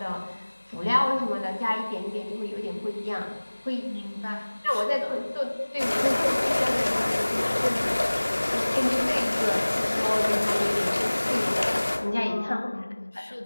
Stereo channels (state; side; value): inverted; both; correlation -1.00